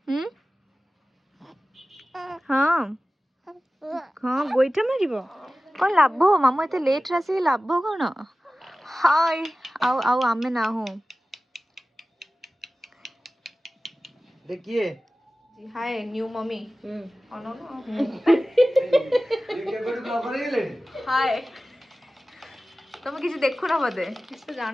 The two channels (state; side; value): normal; both; correlation 0.96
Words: हाँ हाँ गोइठा मारिबो कौन लाभ मामू एते लेट रासी लाभ कौन हाय आउ आउ आमे ना हो देखिए हाय न्यू मम्मी अनो ना ये के बड़ ब्लॉगर हेले हाय तुम किसी देखु ना बोधे किसी तो